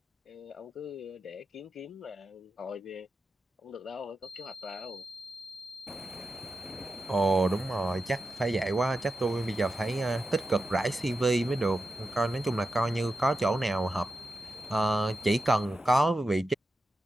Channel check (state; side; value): normal; both; correlation 0.90